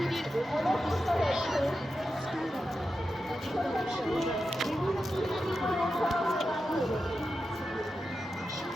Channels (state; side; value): normal; both; correlation 0.90